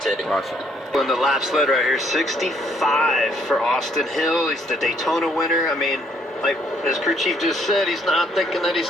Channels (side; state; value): both; normal; correlation 0.67